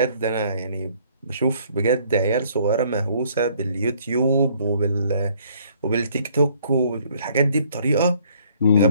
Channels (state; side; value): inverted; both; correlation -0.62